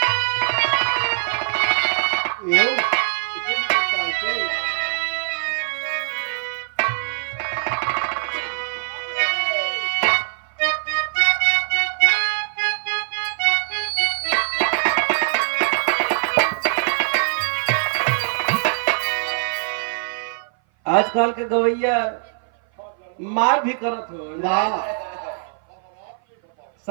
आजकल के गवैया मार भी करत हो,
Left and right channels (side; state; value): left; silent; 58 dB below the other